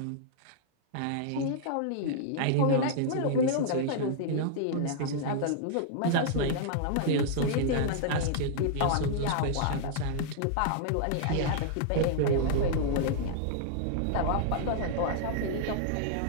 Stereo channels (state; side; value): different; both; correlation -0.01